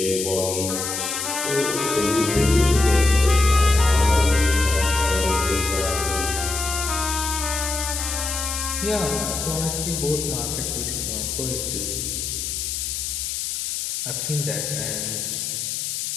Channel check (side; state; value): left; noise; hiss, 3 dB below the sound